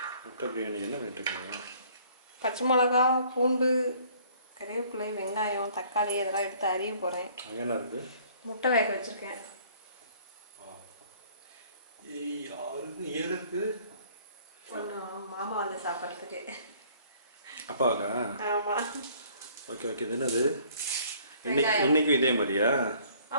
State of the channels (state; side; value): inverted; both; correlation -0.57